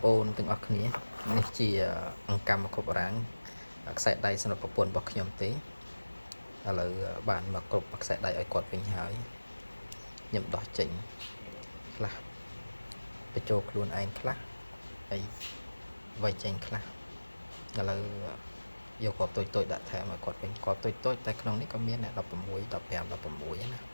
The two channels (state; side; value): inverted; both; correlation -1.00